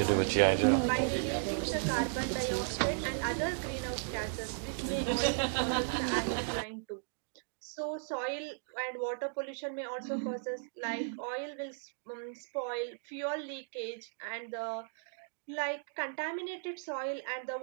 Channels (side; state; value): left; silent; digital silence